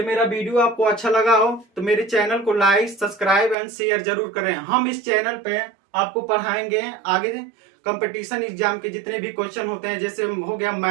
मेरा वीडियो आपको अच्छा लगा हो तो मेरे चैनल को लाइक, सब्सक्राइब एंड शेयर जरूर करें। हम इस चैनल पे आपको पढ़ाएंगे आगे कंपटीशन एग्जाम के जितने भी क्वेश्चन होते हैं, जैसे हो गया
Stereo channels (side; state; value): left; drops out; at 3.6 s